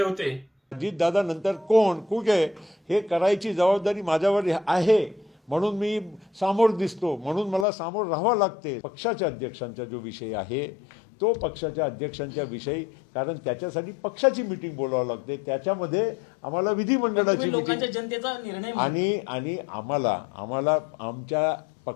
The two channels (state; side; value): drops out; right; at 7.7 s